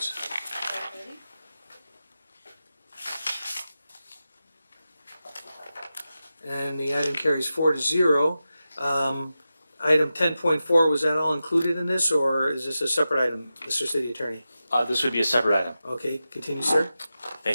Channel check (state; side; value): inverted; both; correlation -0.92